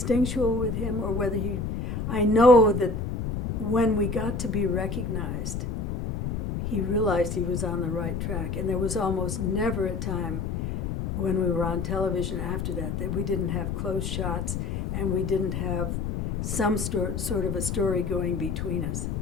with him or whether I know that when we got to be recognized, he realized he was on the right track. And there was almost never a time when we were on television after that we didn't have close shots and we didn't have some sort of a story going between us,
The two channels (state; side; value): noise; left; rumble, 3 dB below the sound